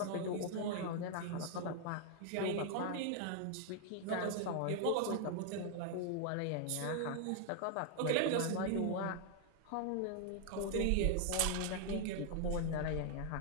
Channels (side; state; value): both; different; correlation 0.00